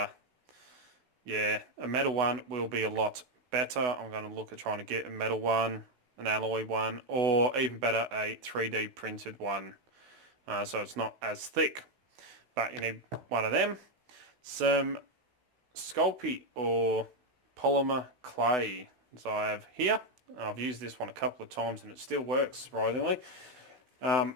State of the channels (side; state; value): left; late; 16 ms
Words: yeah, a metal one will be a lot better. I'm going to look at trying to get a metal one, an alloy one, or even better, a 3D printed one. So it's not as thick. But you need one of them. Some Sculpey or polymer clay. So I have here. I've used this one a couple of times and it still works, surprisingly.